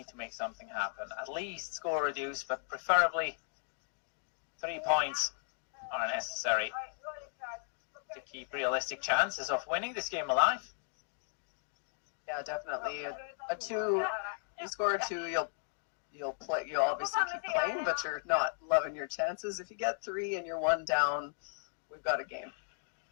to make something happen. At least score reduce, but preferably 3 points are necessary to keep realistic chances of winning this game alive. Yeah, definitely. A 2, you score a 2, you'll play. You'll obviously keep playing, but you're not loving your chances. If you get 3 and you're 1 down, we've got a game.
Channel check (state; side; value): silent; right; digital silence